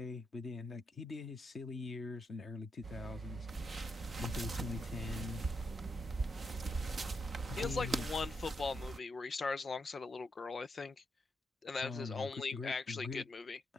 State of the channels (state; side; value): normal; both; correlation 0.82